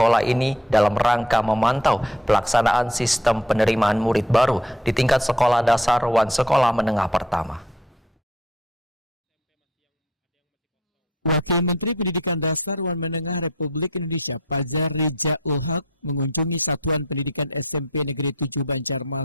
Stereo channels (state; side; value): normal; both; correlation 0.56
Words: ini dalam rangka memantau pelaksanaan sistem penerimaan murid baru di tingkat sekolah dasar Wan Sekolah Menengah Pertama. Wakil Menteri Pendidikan Dasar Wan Menengah Republik Indonesia Fajar Rijaul Haq mengunjungi Satuan Pendidikan SMP Negeri 7